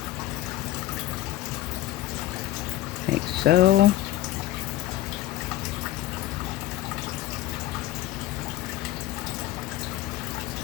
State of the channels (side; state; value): right; quieter; 15.0 dB